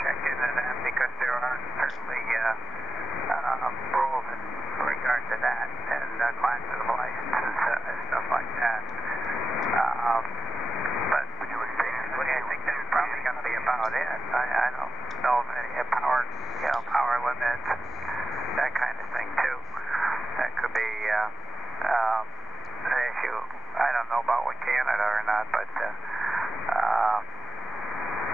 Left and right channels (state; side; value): normal; both; correlation 0.88